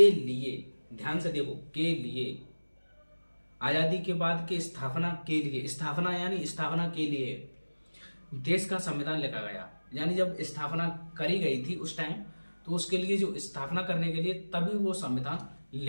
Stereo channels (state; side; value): inverted; both; correlation -1.00